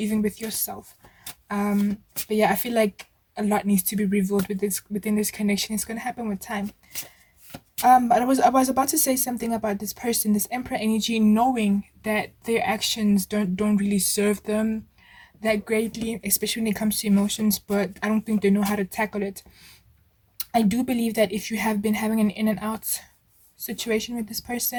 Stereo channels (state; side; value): identical; both; correlation 1.00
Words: with yourself. But yeah, I feel like a lot needs to be revealed within this connection. It's going to happen with time. But I was about to say something about this person, this emperor energy, knowing that their actions don't really serve them that greatly, especially when it comes to emotions, but I don't think they know how to tackle it. I do believe that if you have been having an in and out situation with this